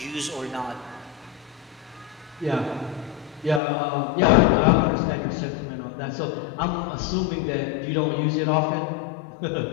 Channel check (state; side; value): drops out; right; at 3.6 s